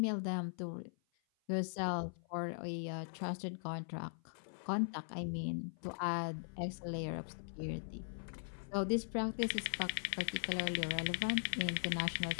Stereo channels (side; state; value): right; silent; 51 dB below the other